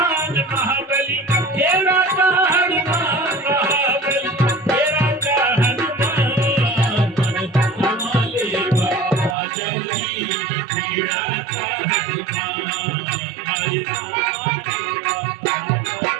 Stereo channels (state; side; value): drops out; left; at 9.3 s